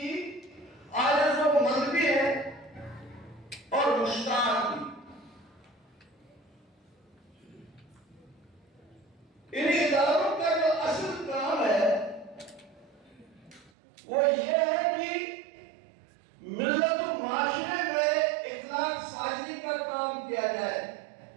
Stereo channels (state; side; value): drops out; left; at 13.7 s